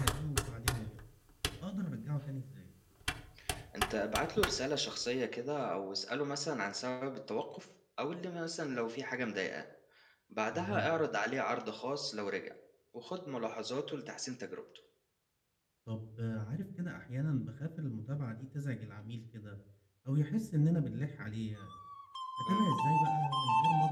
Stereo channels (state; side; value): identical; both; correlation 1.00